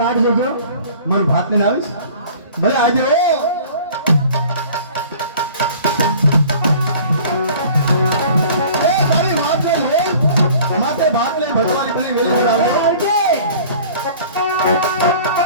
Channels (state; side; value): inverted; both; correlation -0.47